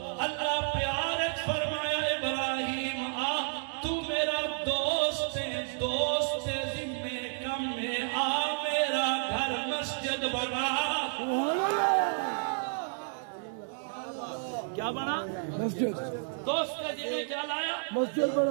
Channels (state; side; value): silent; left; digital silence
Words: اللہ پیارت فرمایا ابراہیم آ تو میرا دوست ہے دوست ذمہ کم میں آ میرا گھر مسجد بنا کیا بنا مسجد دوست کا ذمہ کیا لایا مسجد